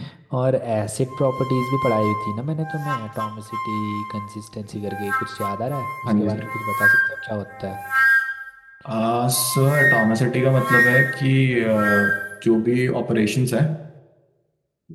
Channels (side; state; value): both; identical; correlation 1.00